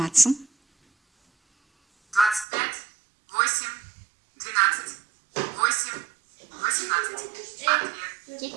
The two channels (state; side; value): drops out; left; at 2.5 s